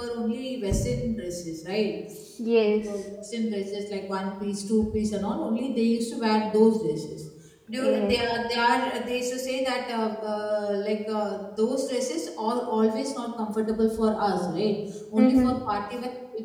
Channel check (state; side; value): identical; both; correlation 1.00